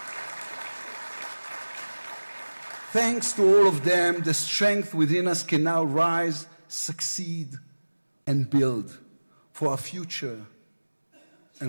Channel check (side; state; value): both; inverted; correlation -1.00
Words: Thanks to all of them, the strength within us can now rise, succeed, and build for our future